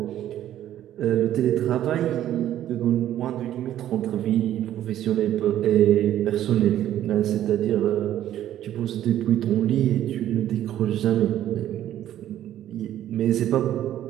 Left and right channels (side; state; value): left; quieter; 12.0 dB